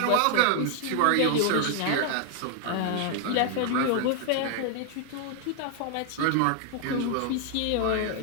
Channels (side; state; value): both; different; correlation 0.00